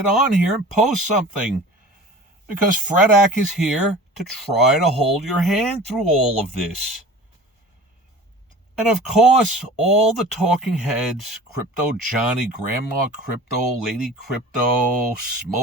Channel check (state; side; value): normal; both; correlation 0.40